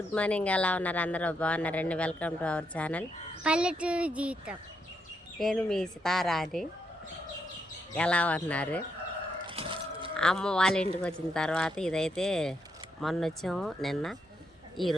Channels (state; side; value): normal; both; correlation 0.80